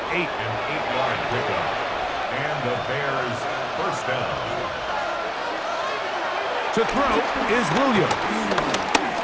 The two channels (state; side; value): identical; both; correlation 1.00